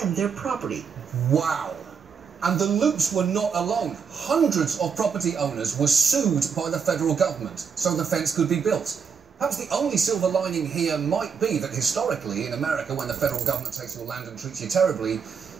their property. Wow. And the loops were not alone. Hundreds of property owners were sued by the federal government so the fence could be built. Perhaps the only silver lining here might be that historically in America, when the federal government takes your land and treats you terribly,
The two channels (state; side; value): quieter; left; 6.4 dB